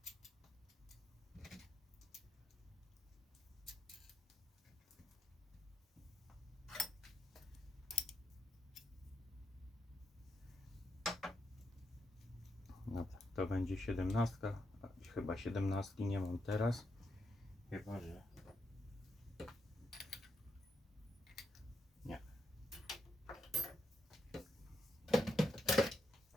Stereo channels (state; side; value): normal; both; correlation 0.81